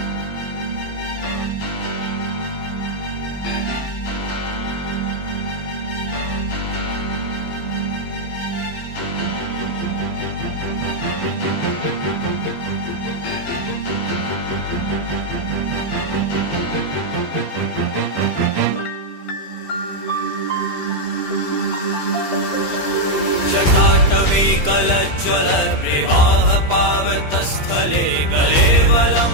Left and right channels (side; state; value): right; late; 15 ms